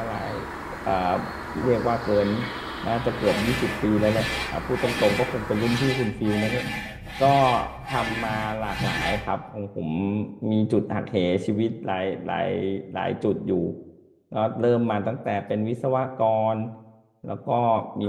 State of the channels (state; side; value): identical; both; correlation 1.00